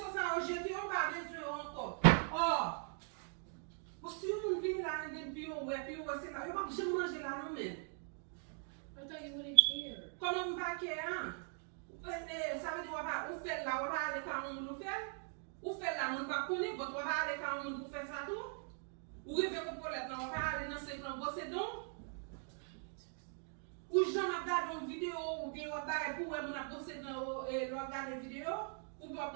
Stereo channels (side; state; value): left; silent; 51 dB below the other